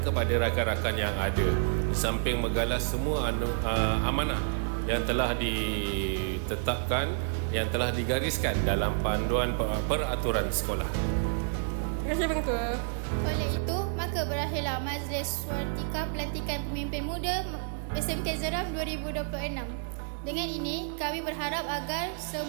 kepada rakan-rakan yang ada, di samping menggalas semua amanah yang telah ditetapkan, yang telah digariskan dalam panduan peraturan sekolah. Terima kasih Pengetua. Oleh itu, maka berakhirlah majlis watika pelantikan pemimpin muda SMK Jeram 2026. Dengan ini, kami berharap agar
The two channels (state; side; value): silent; left; digital silence